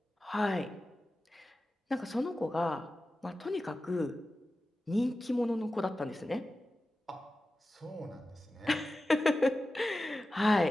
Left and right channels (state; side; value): normal; both; correlation 0.94